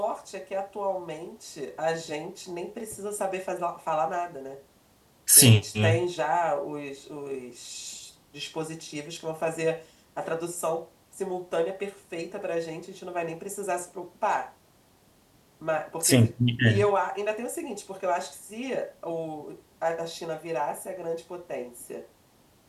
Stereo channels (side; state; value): both; identical; correlation 1.00